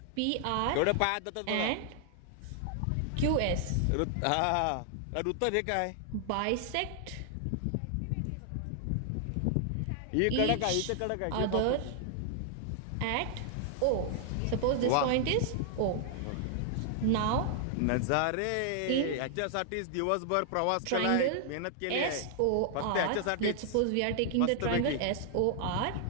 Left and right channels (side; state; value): both; different; correlation 0.00